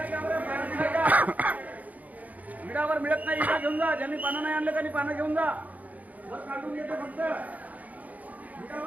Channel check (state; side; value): late; left; 0.076 ms